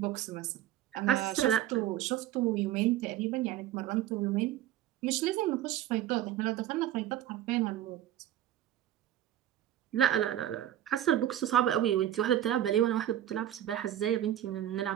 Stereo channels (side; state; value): left; quieter; 12.2 dB